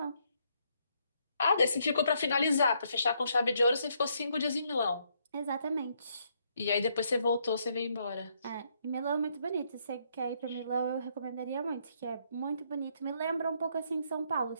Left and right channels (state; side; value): inverted; both; correlation -0.73